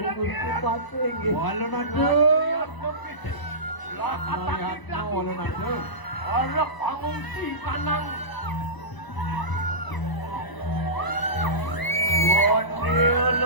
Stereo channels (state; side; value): late; right; 1.0 ms